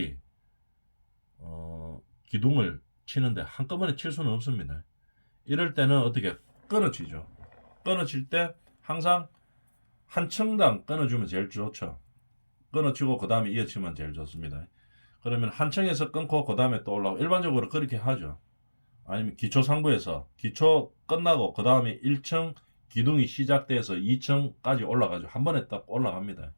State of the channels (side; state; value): both; inverted; correlation -1.00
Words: 기둥을 치는데 한꺼번에 칠 수는 없습니다. 이럴 때는 어떻게 끊어지죠. 끊어질 때 항상 한 층당 끊어주면 제일 좋죠. 끊어치고 그 다음에 이어치면 제일 좋습니다. 그러면 한 층에서 끊고 그 다음에 또 올라오고 일반적으로 그렇게 하죠. 아니면 기초 상부에서 기초 끝나고 그 다음에 1층 기둥이 시작돼서 2층까지 올라가죠. 한 번에 딱 올라갑니다.